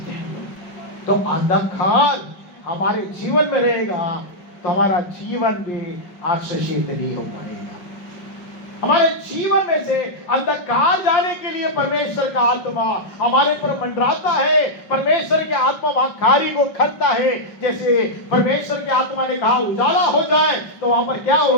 हैं। तो अंधकार हमारे जीवन में रहेगा तो हमारा जीवन भी आशीषित नहीं हो पाएगा। हमारे जीवन में से अंधकार जाने के लिए परमेश्वर का आत्मा हमारे पर मंडराता है। परमेश्वर की आत्मा वहां कार्य को करता है। जैसे परमेश्वर की आत्मा ने कहा उजाला हो जाए, तो वहां पर क्या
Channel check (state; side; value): late; right; 5.5 ms